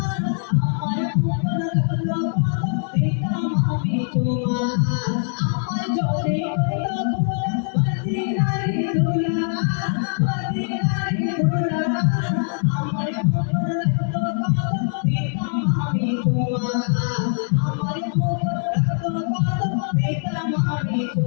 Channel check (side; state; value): right; silent; digital silence